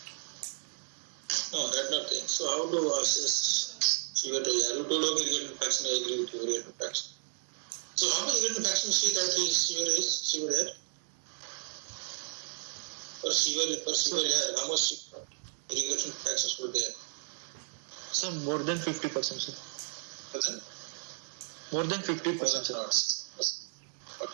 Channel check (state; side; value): silent; left; 56 dB below the other